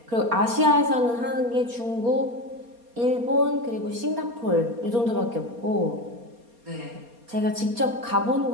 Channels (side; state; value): left; late; 4.3 ms